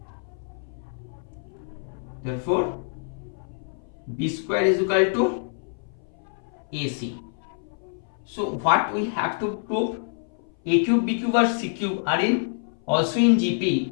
therefore B square is equal to AC. So what we have to prove? A cube, B cube or C cube are in also in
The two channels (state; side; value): silent; right; 58 dB below the other